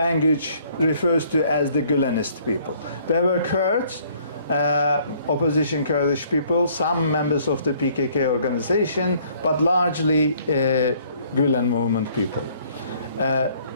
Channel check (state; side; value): inverted; both; correlation -0.61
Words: refers to as the Gülenist people. There were Kurds, opposition Kurdish people, some members of the PKK organization, but largely Gülen movement people.